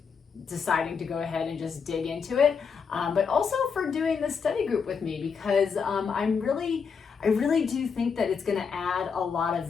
deciding to go ahead and just dig into it, but also for doing this study group with me, because I really do think that it's going to add a lot of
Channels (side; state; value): right; quieter; 6.0 dB